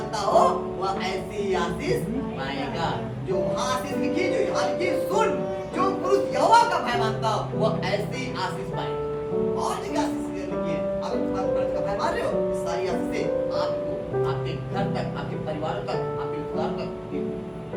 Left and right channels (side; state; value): both; identical; correlation 1.00